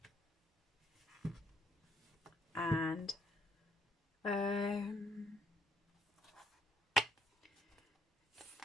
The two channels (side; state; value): both; normal; correlation 0.69